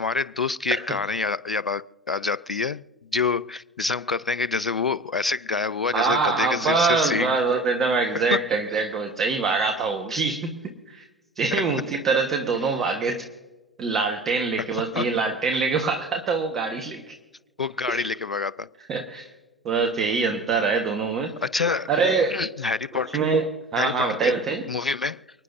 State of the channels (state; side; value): normal; both; correlation 0.37